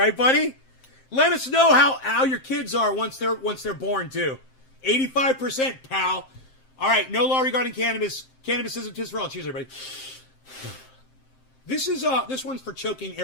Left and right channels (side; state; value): right; late; 7.6 ms